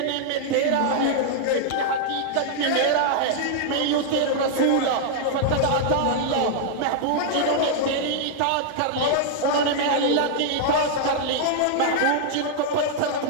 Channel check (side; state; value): both; different; correlation -0.01